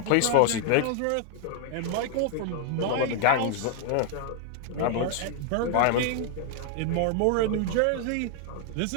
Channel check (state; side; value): different; both; correlation 0.00